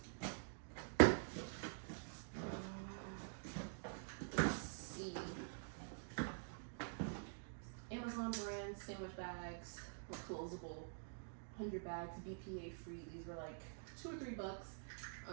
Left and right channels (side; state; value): left; silent; digital silence